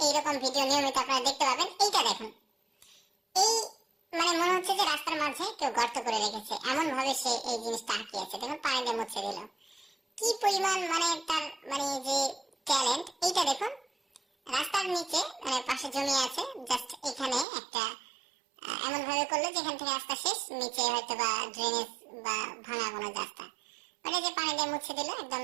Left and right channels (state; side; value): drops out; left; at 17.4 s